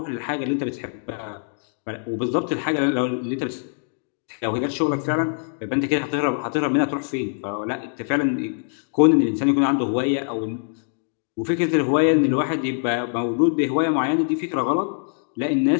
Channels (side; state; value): right; silent; digital silence